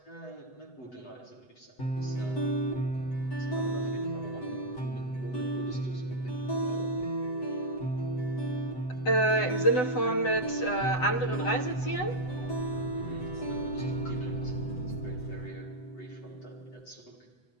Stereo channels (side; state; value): right; late; 7.9 ms